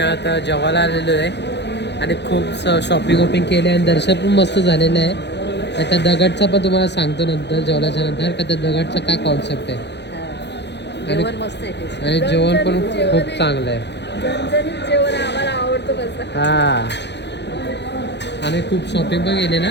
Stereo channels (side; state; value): right; late; 0.50 ms